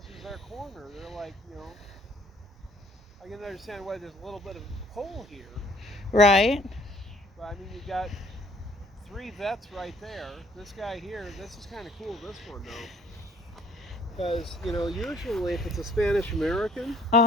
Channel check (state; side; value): normal; both; correlation 0.58